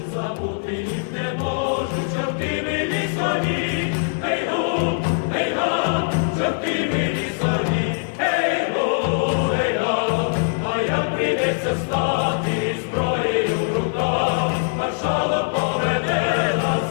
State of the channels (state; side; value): silent; right; digital silence